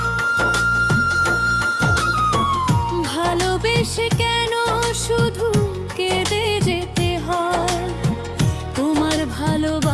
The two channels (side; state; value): both; identical; correlation 1.00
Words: ভালোবেসে কেন শুধু কেঁদে যেতে হয়? তোমার